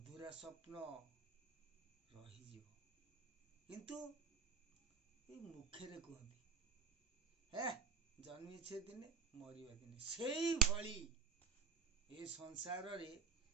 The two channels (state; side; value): quieter; left; 6.2 dB